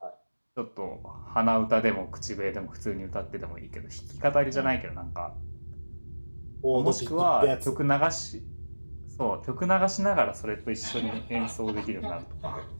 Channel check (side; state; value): both; inverted; correlation -1.00